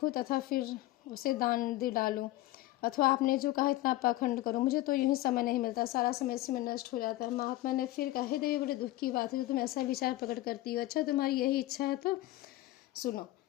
तथा फिर उसे दान दे डालूं, अथवा आपने जो कहा इतना पाखंड करूं। मुझे तो यूं ही समय नहीं मिलता, सारा समय इसी में नष्ट हो जाता है। महात्मा ने फिर कहा, हे देवी, बड़े दुख की बात है जो तुम ऐसा विचार प्रकट करती हो। अच्छा, तुम्हारी यही इच्छा है तो सुनो,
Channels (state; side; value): quieter; right; 16.9 dB